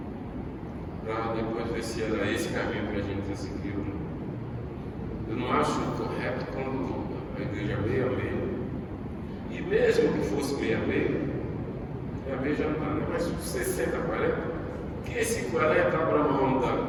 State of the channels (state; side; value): identical; both; correlation 1.00